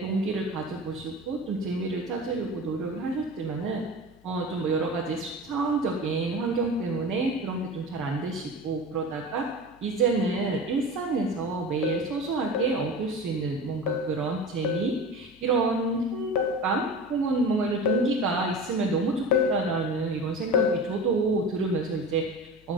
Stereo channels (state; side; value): noise; left; hum, 28 dB below the sound